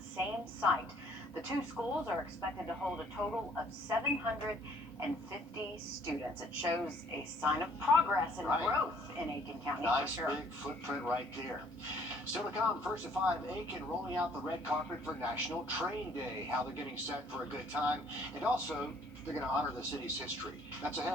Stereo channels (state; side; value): normal; both; correlation 0.61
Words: same site. The two schools are expected to hold a total of 750 students. It shows a sign of progress and growth in Aiken County. Nice for sure. big footprint right there. Still to come, first at 5, Aiken rolling out the red carpet for National Train Day. How they're getting set for a good time. And also, they're going to honor the city's history. That's